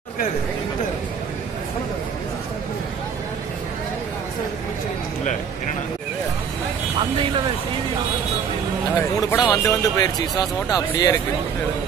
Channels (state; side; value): quieter; left; 6.9 dB